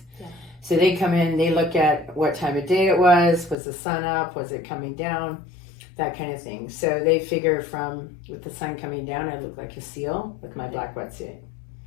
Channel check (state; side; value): drops out; right; at 3.6 s